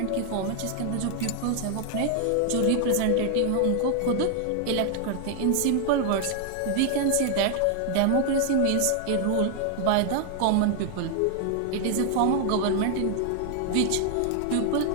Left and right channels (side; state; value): both; different; correlation 0.00